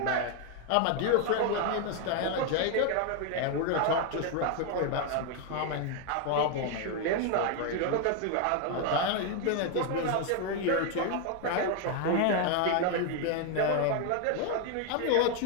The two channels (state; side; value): different; both; correlation 0.00